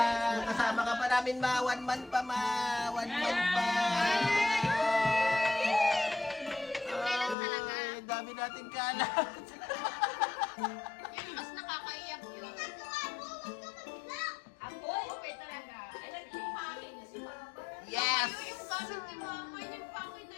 Kasama ka pa namin, ma. 1 month pa, ma. 1 month pa. Kailan talaga? Ay, dami natin kalat. Yun, mas nakakaiyak yun. Ako? Okay talaga. Alam yung pangin niya si Mama. Yes! Yung gamit ni mama, yung pakit na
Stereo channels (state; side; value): drops out; right; at 7.4 s